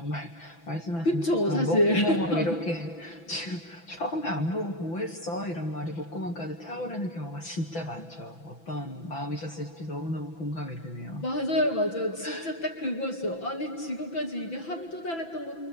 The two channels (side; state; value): right; late; 6.0 ms